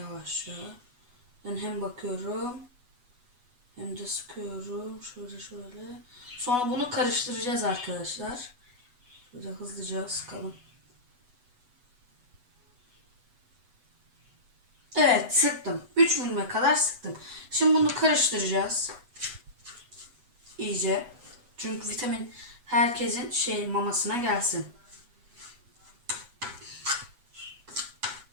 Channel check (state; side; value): late; left; 8.1 ms